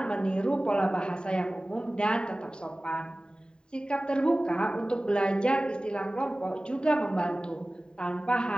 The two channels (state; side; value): late; right; 0.048 ms